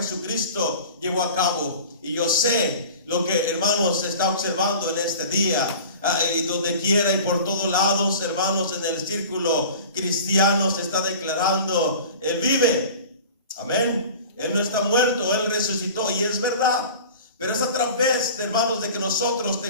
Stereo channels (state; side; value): inverted; both; correlation -0.40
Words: llevó a cabo, y yo sé lo que, hermanos, se está observando en este día. y donde quiera y por todos lados, hermanos, en el círculo cristiano se está declarando: Él vive. Amén. Él no está muerto, Él resucitó, y es verdad. Pero es a través, hermanos, de que nosotros